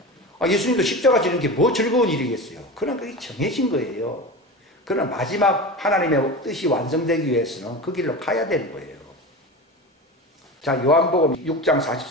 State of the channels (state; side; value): normal; both; correlation 0.28